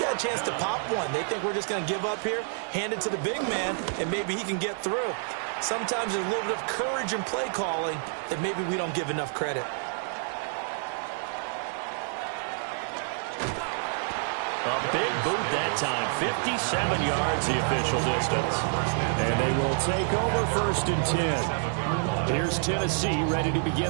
got a chance to pop one. They think we're just going to give up here, hand it to the big man, and maybe he can get through. Sometimes there's a little bit of courage in play calling that maybe we don't give enough credit. that time. 57 yards, the official distance. And they will take over 1st and 10. Here's Tennessee ready to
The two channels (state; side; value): silent; left; 59 dB below the other